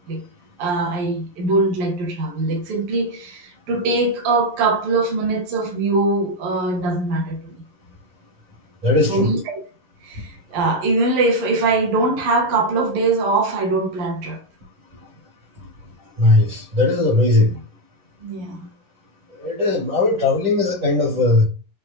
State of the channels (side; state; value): left; late; 11 ms